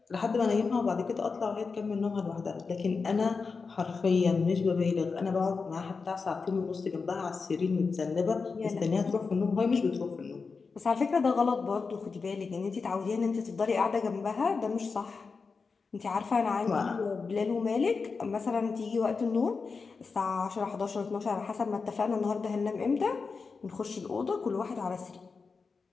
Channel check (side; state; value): right; quieter; 4.8 dB